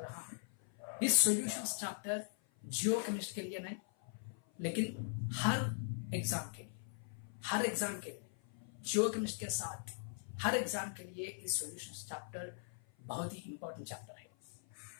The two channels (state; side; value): silent; right; 51 dB below the other